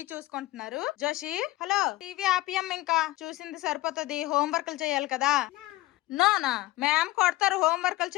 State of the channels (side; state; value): right; quieter; 18.0 dB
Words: చూసుకుంటున్నారు. జోషి, హలో, టీవీ ఆపియం, ఇంకా చూసింది సరిపోతుంది, హోంవర్క్లు చేయాలి కదా. నోనా మ్యామ్ కొడతారు హోంవర్క్లు